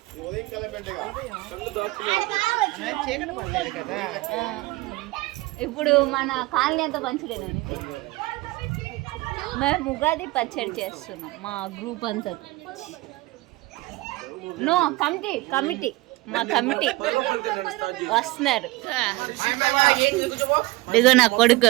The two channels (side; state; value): left; quieter; 20.8 dB